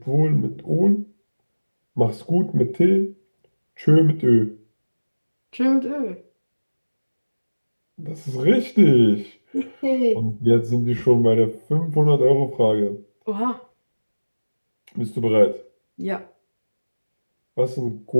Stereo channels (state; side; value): inverted; both; correlation -1.00